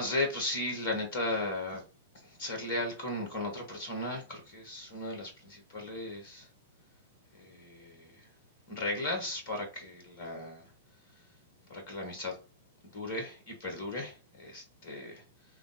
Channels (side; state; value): both; inverted; correlation -0.30